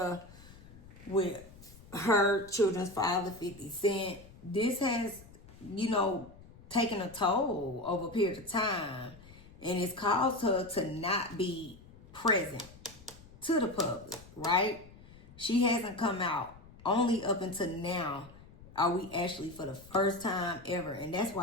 with her children's father, 50 Cent, this has, taken a toll over a period of time. And it's caused her to not be present to the public, right? She hasn't come out. Only up until now are we actually for the first time ever. And that's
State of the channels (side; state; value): left; noise; rumble, 21 dB below the sound